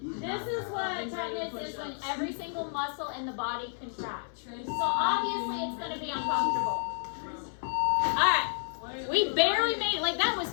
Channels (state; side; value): silent; right; 57 dB below the other